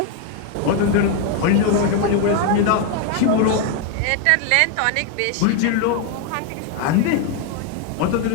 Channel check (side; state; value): both; different; correlation 0.01